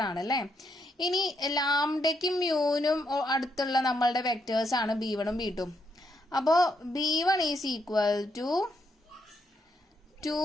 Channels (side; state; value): both; normal; correlation 0.77